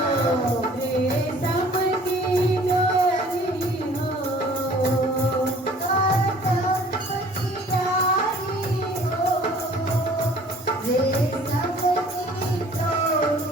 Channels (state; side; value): normal; both; correlation 0.52